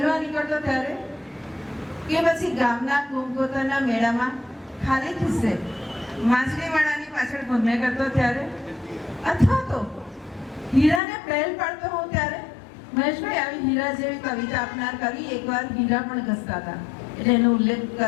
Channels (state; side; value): drops out; right; at 11.0 s